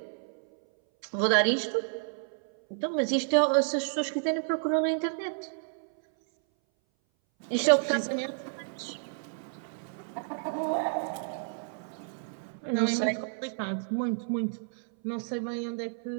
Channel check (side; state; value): left; silent; 58 dB below the other